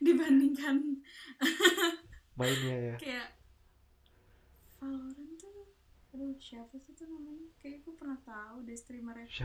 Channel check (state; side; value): identical; both; correlation 1.00